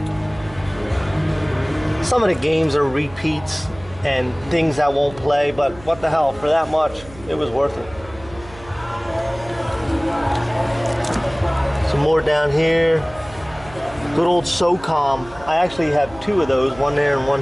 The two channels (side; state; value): right; noise; hum, 19 dB below the sound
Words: Some of the games are repeats and things I won't play, but what the hell, for that much, it was worth it. Some more down here. Good old SOCOM. I actually have two of those, one there and one